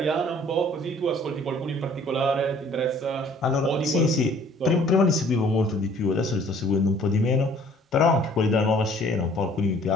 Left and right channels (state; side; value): normal; both; correlation 0.55